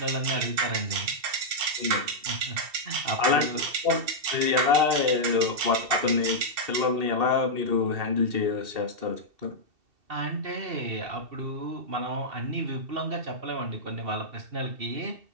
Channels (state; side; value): late; left; 2.7 ms